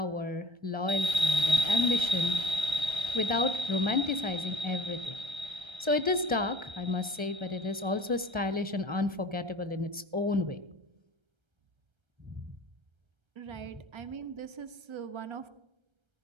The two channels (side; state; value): left; late; 1.3 ms